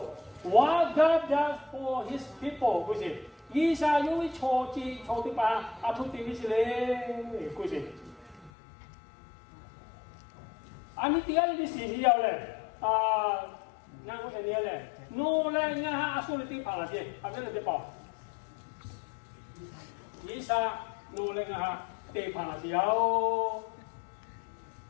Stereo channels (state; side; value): drops out; right; at 8.5 s